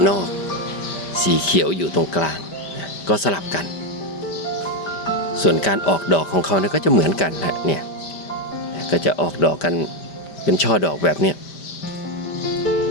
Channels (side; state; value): right; late; 5.1 ms